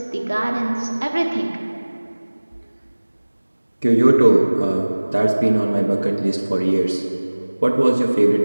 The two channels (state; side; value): inverted; both; correlation -1.00